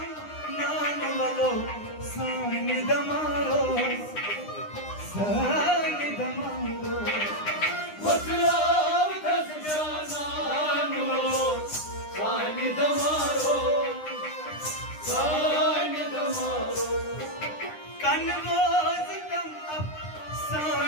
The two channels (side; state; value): right; late; 9.8 ms